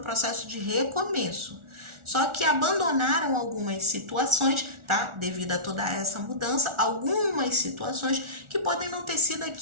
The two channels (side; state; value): left; late; 1.4 ms